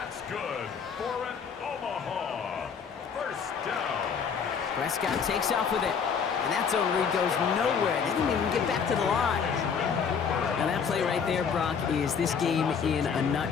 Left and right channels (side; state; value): right; quieter; 6.5 dB